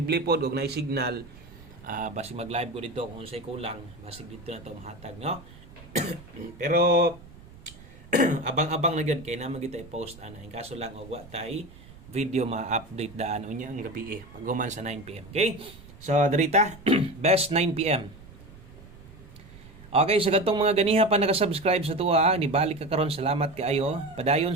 pod og nay signal basig mag-live ko dito kung unsay kulang basig dito na to mahatag no. Pero abang-abang na gyud kay naman kita i-post ana in kaso lang og wa tay video ma-update daan unya ang gabi paghuman sa 9 PM. Okay? So dirita best 9 PM. Okay, sa katong mga ganiha pa naka-subscribe sa tuwa, nibalik ka karon salamat kaayo. Padayon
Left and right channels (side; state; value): right; noise; rumble, 20 dB below the sound